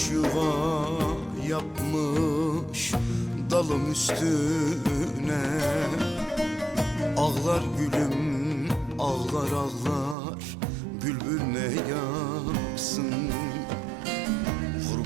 yuva yapmış dalım üstüne. Ağlar gülüm, ağlar ağlar, bülbül ne yapsın?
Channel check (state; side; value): drops out; left; at 10.2 s